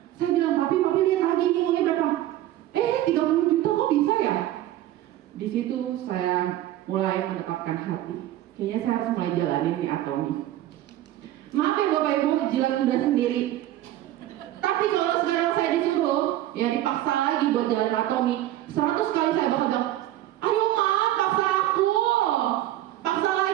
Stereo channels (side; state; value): left; quieter; 13.8 dB